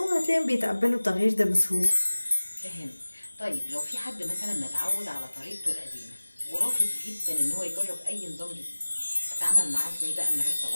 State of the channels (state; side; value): inverted; both; correlation -1.00